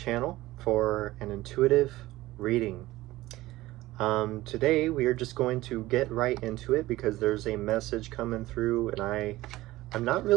for an intuitive reading. Today we are just going to get right into it because there's a message coming through and I'm not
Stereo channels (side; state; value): left; quieter; 17.5 dB